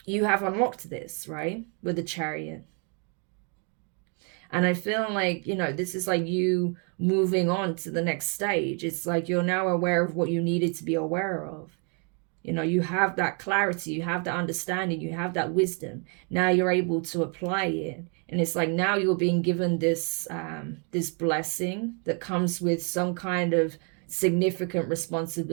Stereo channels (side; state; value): left; quieter; 38.1 dB